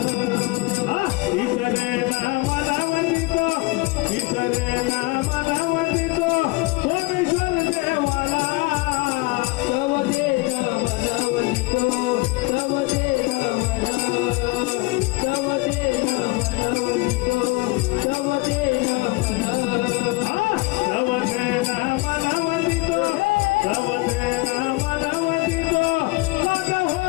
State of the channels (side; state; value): right; quieter; 23.3 dB